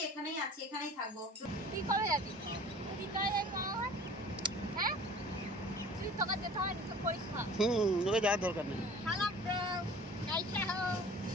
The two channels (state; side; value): normal; both; correlation 0.45